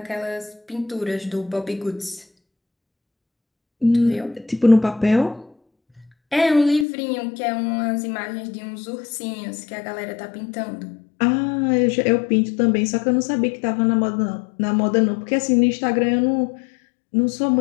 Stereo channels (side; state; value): right; drops out; at 6.9 s